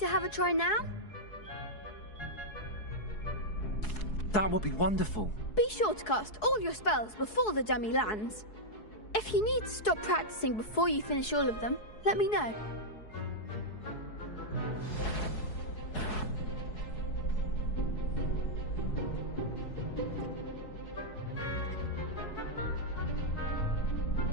have a try now? That would be wonderful. Be sure to cast all your spells before the dummy lands. If you need to stop practicing before you finish all of them, let me know.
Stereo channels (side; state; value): right; late; 4.7 ms